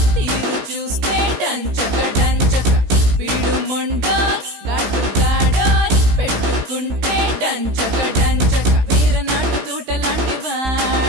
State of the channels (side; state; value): left; late; 16 ms